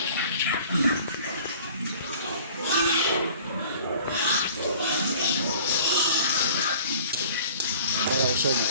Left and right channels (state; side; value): inverted; both; correlation -0.48